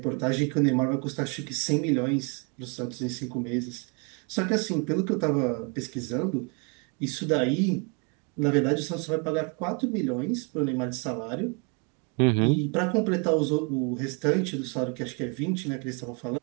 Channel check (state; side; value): quieter; left; 34.5 dB